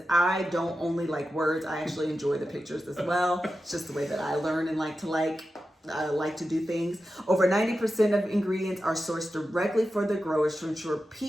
I don't only like words. I actually enjoy the pictures as well. It's just the way that I learn and like to do things. Over 90% of ingredients are sourced directly for the growers to ensure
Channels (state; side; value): normal; both; correlation 0.91